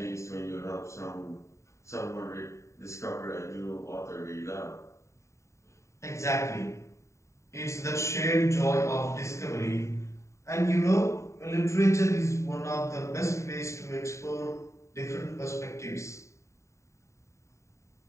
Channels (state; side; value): late; right; 0.14 ms